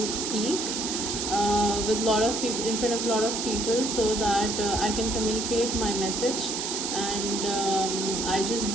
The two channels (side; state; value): right; noise; hiss, 2 dB below the sound